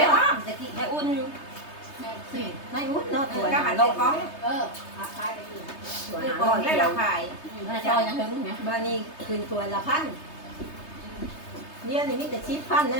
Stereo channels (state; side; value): late; right; 3.3 ms